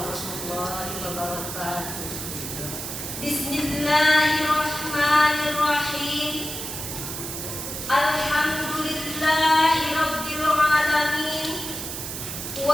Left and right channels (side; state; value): right; noise; hiss, 6 dB below the sound